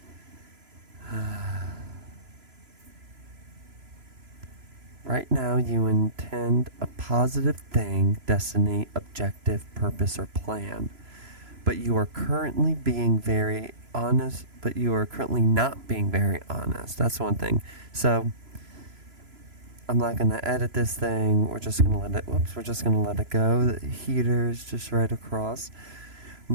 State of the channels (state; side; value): late; left; 3.0 ms